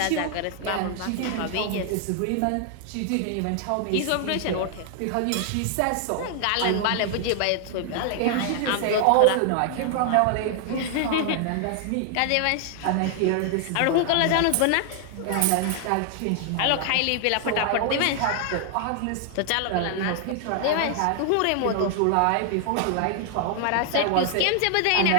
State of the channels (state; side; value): different; both; correlation 0.00